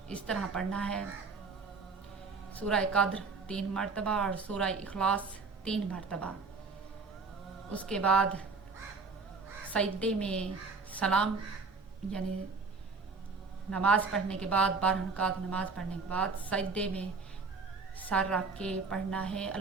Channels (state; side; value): quieter; left; 4.4 dB